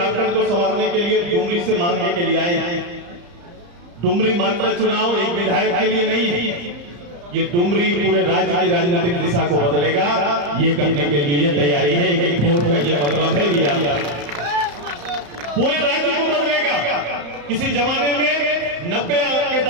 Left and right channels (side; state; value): left; late; 35 ms